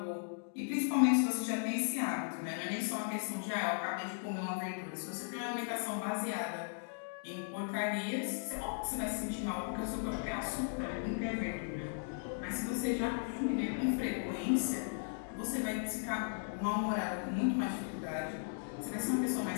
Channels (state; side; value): silent; right; digital silence